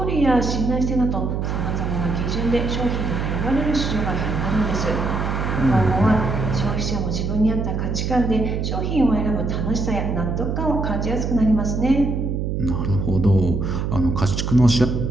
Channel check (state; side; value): noise; right; hum, 1 dB below the sound